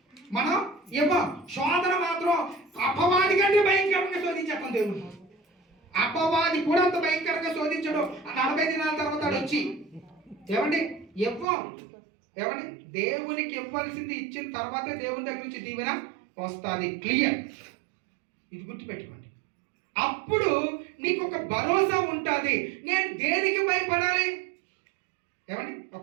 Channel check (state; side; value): drops out; left; at 11.5 s